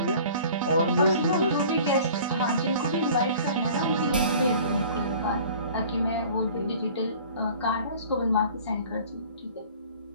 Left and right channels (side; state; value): both; inverted; correlation -0.47